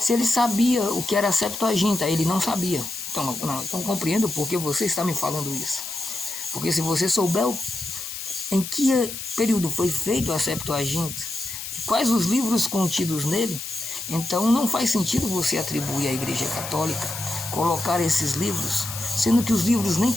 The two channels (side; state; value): left; noise; hiss, 8 dB below the sound